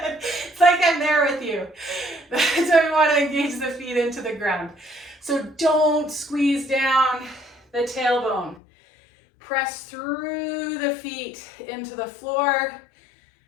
It's like I'm there with you. That's why we want to engage the feet into the ground. So don't squeeze down the tailbone. Press through the feet into the floor.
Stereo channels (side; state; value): right; drops out; at 8.6 s